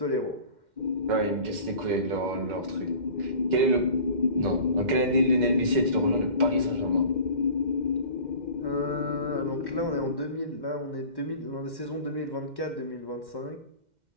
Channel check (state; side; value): late; left; 2.1 ms